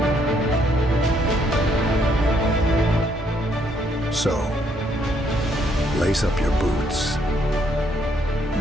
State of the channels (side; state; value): both; normal; correlation 0.71